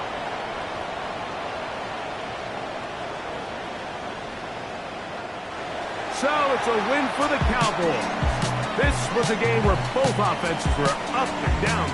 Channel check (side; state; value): both; identical; correlation 1.00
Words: So it's a win for the Cowboys. This was a game where both offenses were up and down